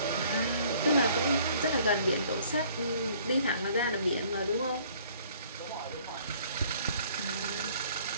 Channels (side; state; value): both; inverted; correlation -0.57